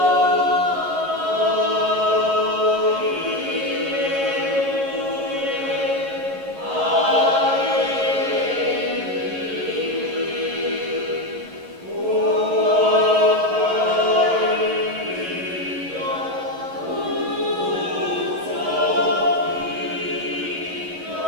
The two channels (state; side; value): late; left; 11 ms